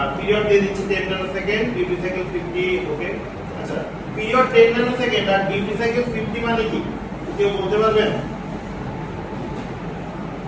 পিরিয়ড দিয়ে দিচ্ছি 10 ন্যানো সেকেন্ড, ডিউটি সাইকেল 50। ওকে, আচ্ছা, পিরিয়ড 10 ন্যানো সেকেন্ড আর ডিউটি সাইকেল 50 মানে কি কেউ বলতে পারবেন?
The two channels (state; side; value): identical; both; correlation 1.00